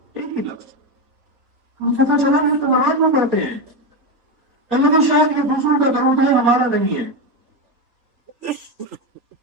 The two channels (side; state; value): left; late; 3.9 ms